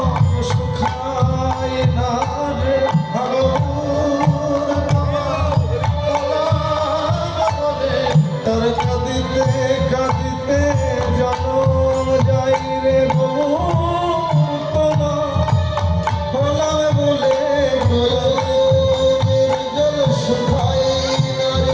শুকায় না রে ভগবান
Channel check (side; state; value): both; identical; correlation 1.00